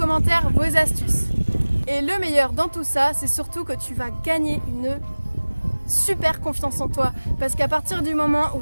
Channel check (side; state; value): both; inverted; correlation -1.00